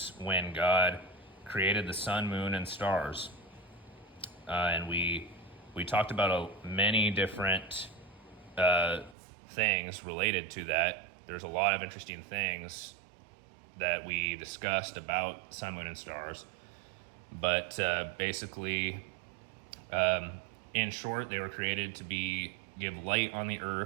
when God created the sun, moon, and stars. And we talked about many different things related to that. There's a lot of interesting things that we discussed about sun, moon, and stars. But basically, in short, they were created to give light on the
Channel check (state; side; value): drops out; left; at 9.2 s